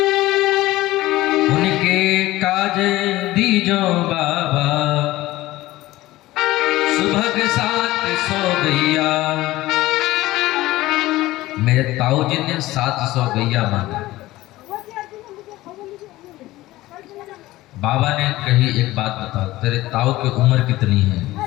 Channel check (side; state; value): right; quieter; 17.4 dB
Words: दीजो बाबा, सुबह के 700 गैया। मेरे ताऊ जी ने 700 गैया मांगा। बाबा ने कही एक बात बता, तेरे ताऊ की उम्र कितनी है?